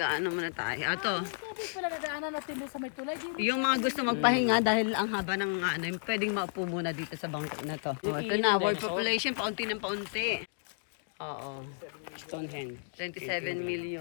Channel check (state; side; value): silent; right; digital silence